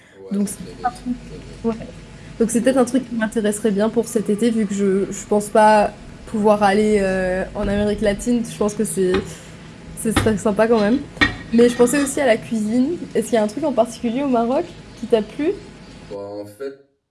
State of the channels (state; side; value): identical; both; correlation 1.00